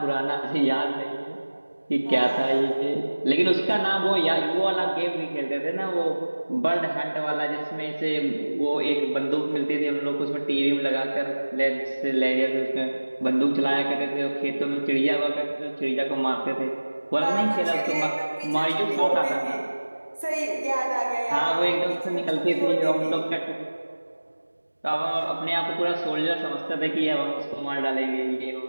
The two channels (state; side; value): inverted; both; correlation -1.00